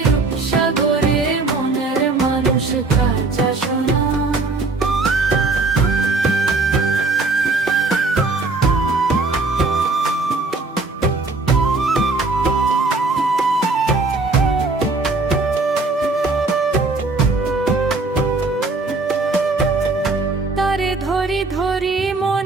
রূপসাগরে মনের মানুষ কাঁচা সোনা। তারে ধরি ধরি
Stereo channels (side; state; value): left; quieter; 3.6 dB